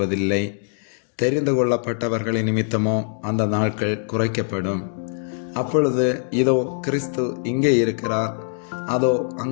தெரிந்து கொள்ளப்பட்டவர்களின் நிமித்தமோ அந்த நாட்கள் குறைக்கப்படும். அப்பொழுது இதோ கிறிஸ்து இங்கே இருக்கிறார், அதோ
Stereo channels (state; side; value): silent; right; 64 dB below the other